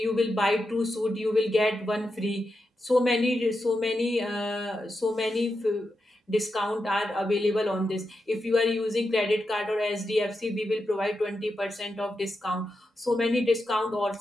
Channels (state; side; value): normal; both; correlation 0.87